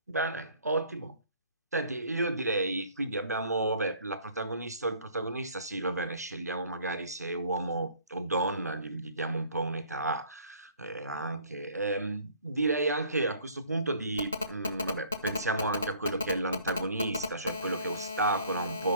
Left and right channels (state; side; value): inverted; both; correlation -0.56